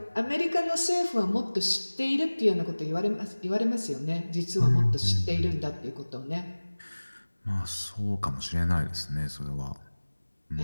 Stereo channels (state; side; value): inverted; both; correlation -1.00